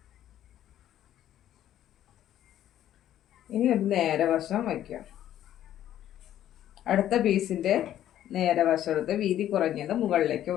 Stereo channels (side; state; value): right; quieter; 11.8 dB